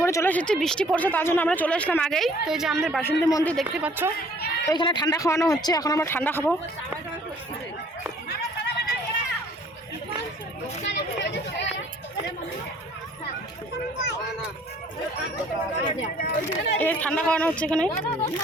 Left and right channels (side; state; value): both; normal; correlation 0.57